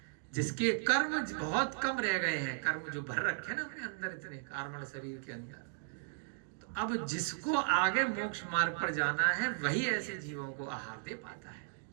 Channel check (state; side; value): silent; left; digital silence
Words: जिसके कर्म बहुत कम रह गए हैं, कर्म जो भर रखे ना अपने अंदर, इतने कार्मण शरीर के अंदर, तो अब जिसको आगे मोक्ष मार्ग पर जाना है वही ऐसे जीवों को आहार दे पाता है।